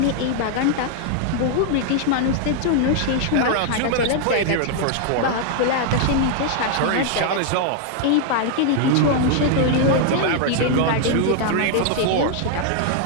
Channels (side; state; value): both; different; correlation 0.00